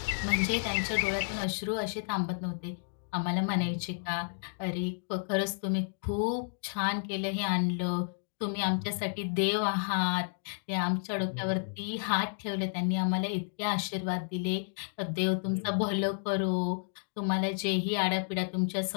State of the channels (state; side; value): silent; right; digital silence